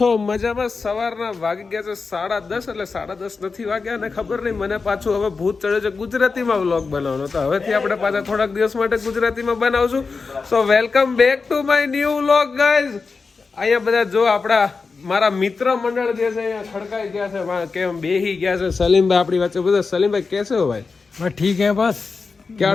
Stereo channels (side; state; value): right; quieter; 4.5 dB